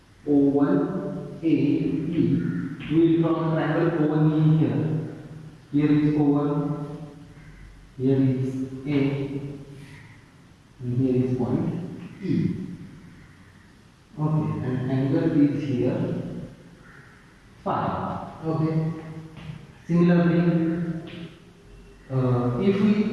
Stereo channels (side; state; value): both; identical; correlation 1.00